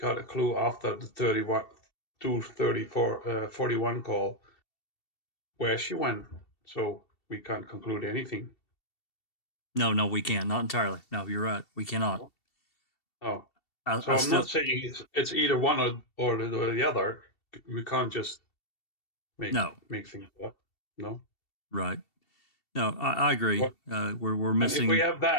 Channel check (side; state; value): right; late; 2.7 ms